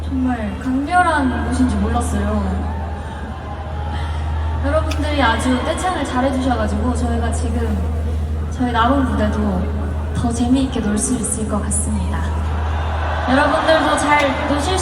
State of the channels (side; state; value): both; identical; correlation 1.00